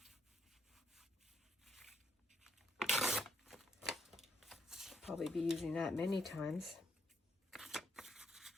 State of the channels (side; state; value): both; normal; correlation 0.75